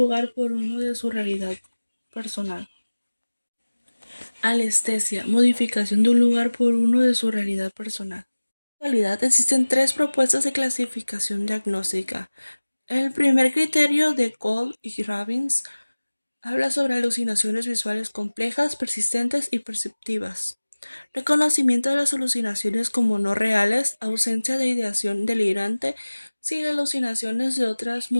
por uno de su realidad personal. Alestesia, modificación de un lugar por uno de su realidad personal. En la actualidad existen tres propuestas de clasificación diagnóstica. El primer criterio de Cole y Robbins habla sobre alucinaciones visuales complejas, persistentes y perceptivas. Reconocimiento de las alucinaciones como no reales, ausencia de ideación delirante, sin alucinaciones de otras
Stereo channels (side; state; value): both; inverted; correlation -1.00